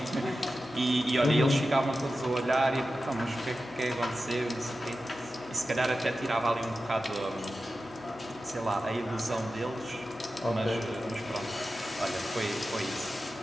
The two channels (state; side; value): noise; left; hum, 24 dB below the sound